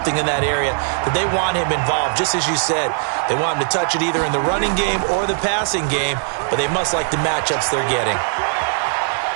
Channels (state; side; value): silent; left; 65 dB below the other